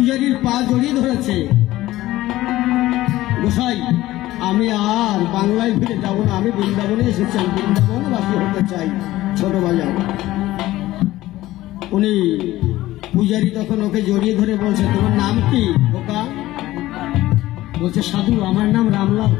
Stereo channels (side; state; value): right; quieter; 16.3 dB